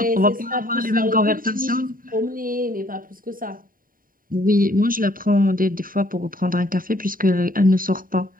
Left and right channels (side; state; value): left; late; 0.41 ms